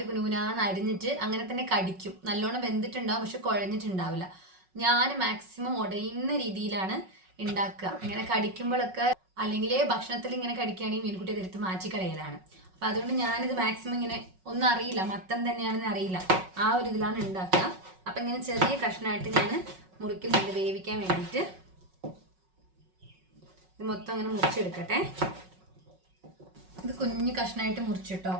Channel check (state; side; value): late; left; 5.4 ms